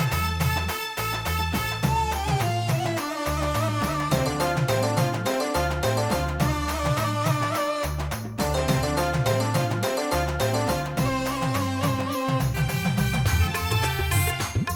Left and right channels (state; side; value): identical; both; correlation 1.00